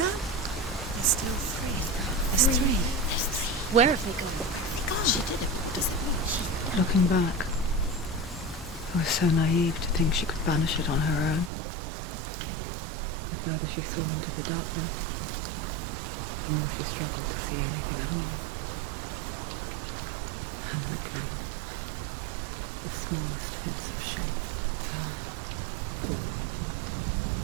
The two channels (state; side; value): drops out; left; at 11.5 s